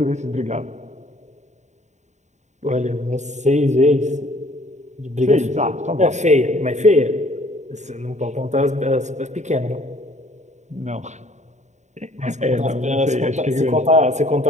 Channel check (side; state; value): left; late; 0.34 ms